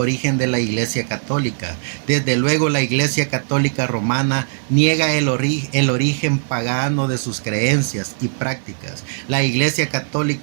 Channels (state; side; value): silent; left; digital silence